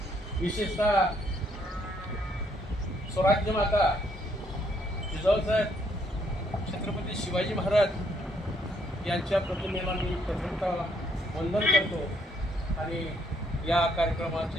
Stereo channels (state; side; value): normal; both; correlation 0.70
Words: विशेषतः स्वराज्य माता जिजाऊसाहेब छत्रपती शिवाजी महाराज यांच्या प्रतिमेला मी प्रथमतः वंदन करतो आणि या